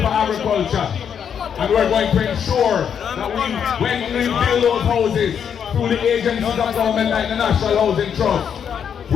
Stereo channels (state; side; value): quieter; right; 7.9 dB